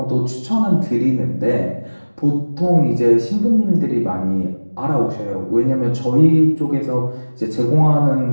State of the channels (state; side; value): inverted; both; correlation -1.00